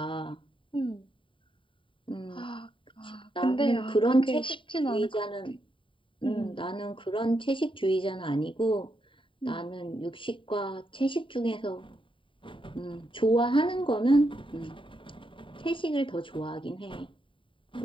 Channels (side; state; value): right; late; 0.25 ms